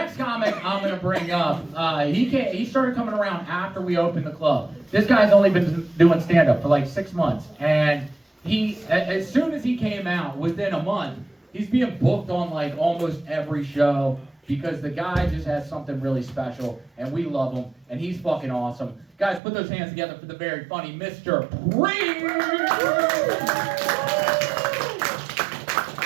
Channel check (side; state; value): left; drops out; at 19.4 s